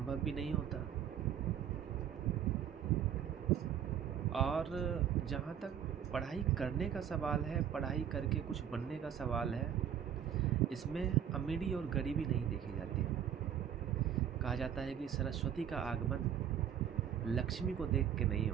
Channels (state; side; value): quieter; left; 9.3 dB